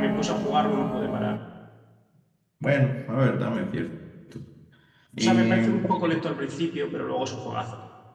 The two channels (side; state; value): both; identical; correlation 1.00